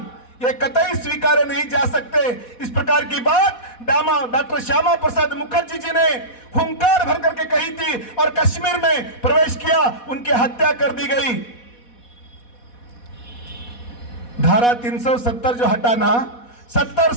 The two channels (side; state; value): right; late; 4.1 ms